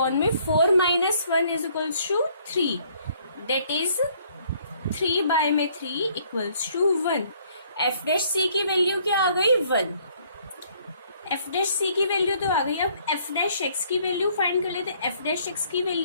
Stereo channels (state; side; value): inverted; both; correlation -0.63